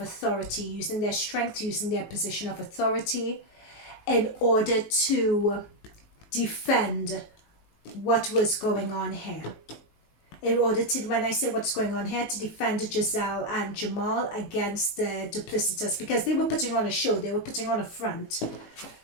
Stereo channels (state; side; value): late; right; 19 ms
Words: using their strength, using their position of authority in order to defend what was going on here. In order to, when I say what's going on here, to defend Gizelle and Jamal against the duplicitous, because they were putting on a show. They were putting on a front.